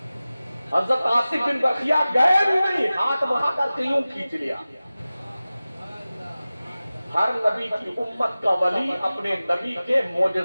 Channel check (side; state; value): both; inverted; correlation -0.97